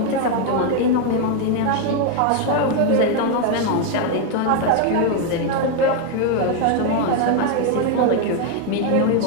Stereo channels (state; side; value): different; both; correlation 0.01